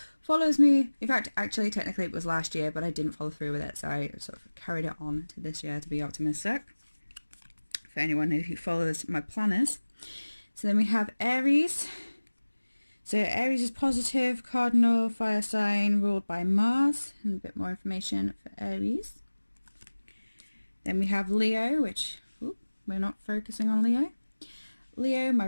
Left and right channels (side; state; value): both; inverted; correlation -1.00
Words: follows me. In fact, actually technically it was last year, but I didn't follow through with it, so I sort of carried it on to this year to be optimistic, for anyone who follows my planners. So then we have Aries. So Aries is positive, cardinal fire sign ruled by Mars, and a bit more information for Aries. Then we have Leo, which we're not focusing on Leo. Leo,